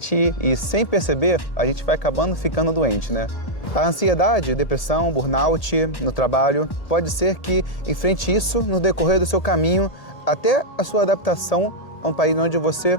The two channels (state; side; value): late; right; 1.8 ms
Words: e, sem perceber, a gente vai acabando ficando doente, né? A ansiedade, depressão, burnout no trabalho, pode ser que enfrente isso no decorrer do seu caminho até a sua adaptação a um país onde você